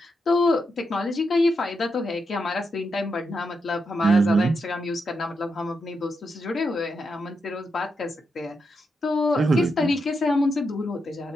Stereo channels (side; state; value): both; normal; correlation 0.84